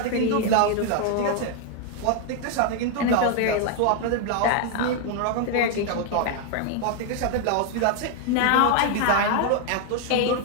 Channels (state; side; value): different; both; correlation 0.00